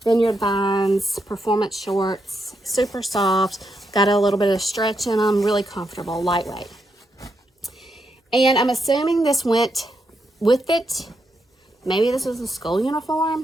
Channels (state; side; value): normal; both; correlation 0.82